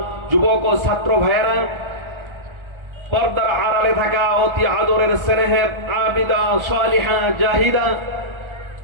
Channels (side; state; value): left; late; 1.4 ms